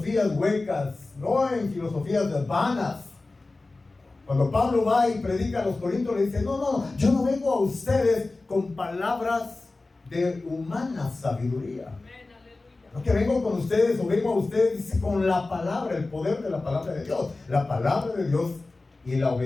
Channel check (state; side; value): quieter; right; 3.3 dB